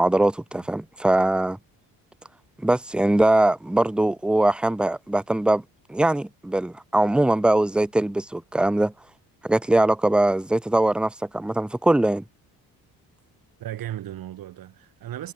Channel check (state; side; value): normal; both; correlation 0.98